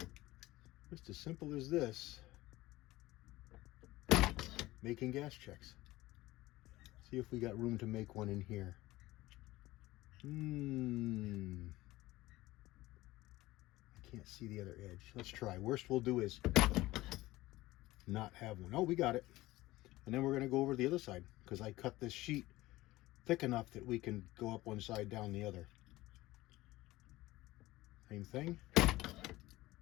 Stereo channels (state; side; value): quieter; right; 18.1 dB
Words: Just as simple as this. Making gas checks. See if we got room to make one in here. I can't see the other edge. Let's try. Worst we'll do is not have one. Oh, we got it. And then we're going to go over to the other side, because I cut this sheet thick enough that we can go up one side, down the other. Same thing. Go